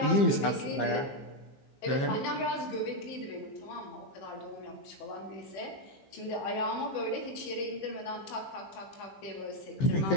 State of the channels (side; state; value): right; late; 15 ms